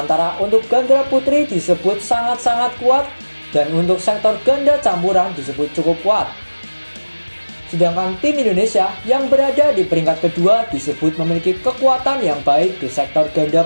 untuk ganda putri disebut sangat-sangat kuat, dan untuk sektor ganda campuran disebut cukup kuat. Sedangkan tim Indonesia yang berada di peringkat kedua disebut memiliki kekuatan yang baik di sektor ganda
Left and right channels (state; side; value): inverted; both; correlation -1.00